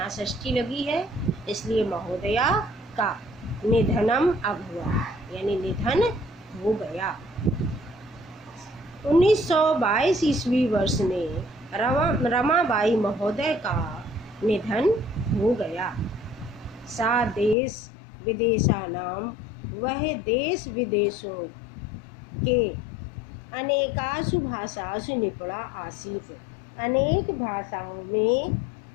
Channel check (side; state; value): right; drops out; at 17.6 s